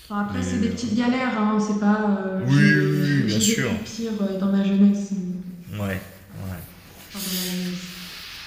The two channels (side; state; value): both; identical; correlation 1.00